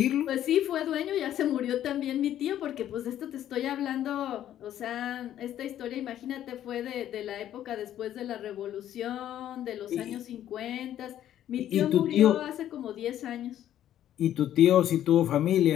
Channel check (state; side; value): quieter; right; 11.5 dB